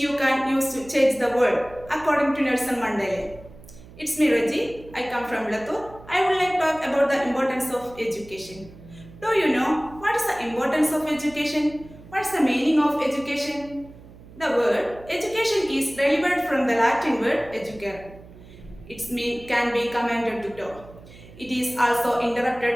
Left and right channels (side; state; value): right; noise; hum, 20 dB below the sound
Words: can use to change the world, according to Nelson Mandela. It's me, Reggie. I come from Latur. I would like to talk about the importance of education. Do you know what is the importance of education? What is the meaning of education? The word education is derived from the Latin word educare. Its mean can be commanded to do. It is also